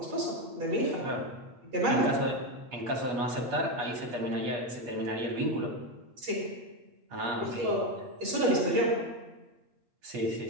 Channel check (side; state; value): left; late; 8.3 ms